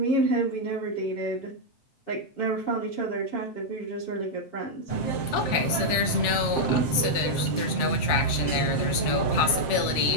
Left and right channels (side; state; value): right; late; 8.7 ms